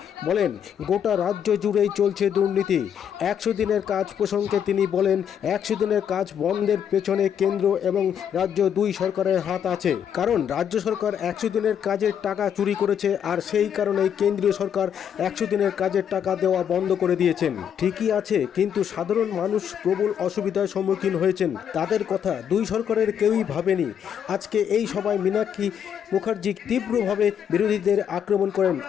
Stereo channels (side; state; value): right; quieter; 8.6 dB